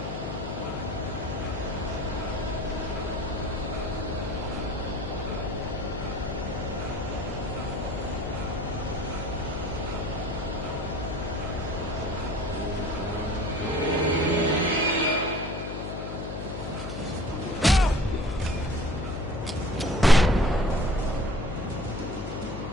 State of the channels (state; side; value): noise; left; hum, 6 dB below the sound